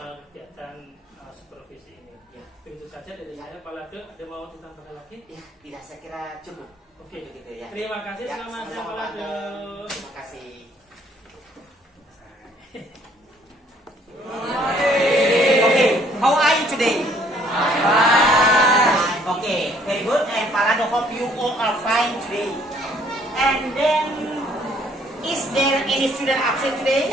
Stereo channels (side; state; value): both; normal; correlation 0.62